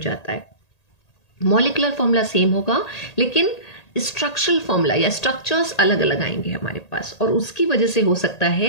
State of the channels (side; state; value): right; late; 1.8 ms